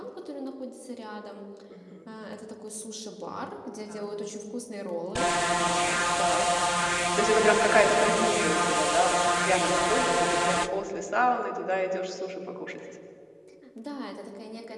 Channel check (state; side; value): identical; both; correlation 1.00